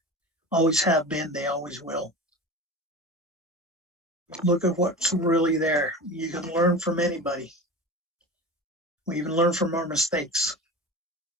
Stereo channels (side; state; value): both; normal; correlation 0.32